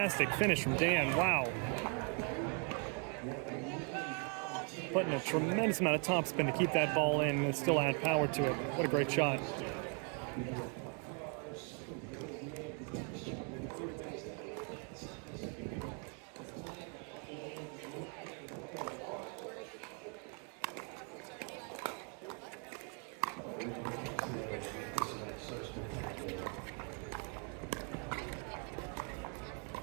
finish from Dan. Wow. Putting a tremendous amount of topspin to keep that ball in and still add power to it. What a great shot.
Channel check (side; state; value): left; quieter; 39.5 dB